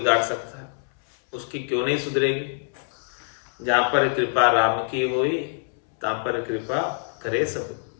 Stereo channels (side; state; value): right; silent; 62 dB below the other